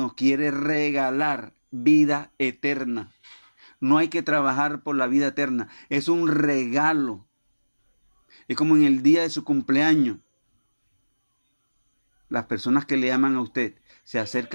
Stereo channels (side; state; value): both; inverted; correlation -1.00